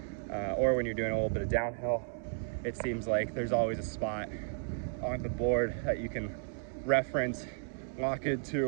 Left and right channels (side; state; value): left; silent; digital silence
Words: or when you're doing a little bit of downhill. It seems like there's always a spot on the board that you can reference, lock